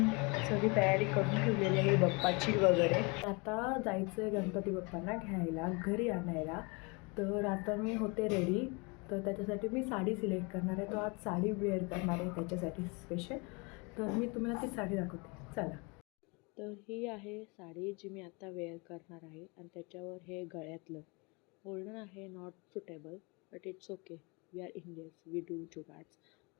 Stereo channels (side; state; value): right; quieter; 29.1 dB